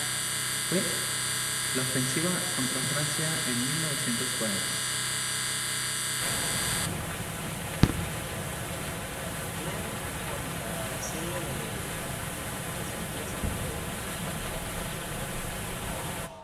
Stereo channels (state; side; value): identical; both; correlation 1.00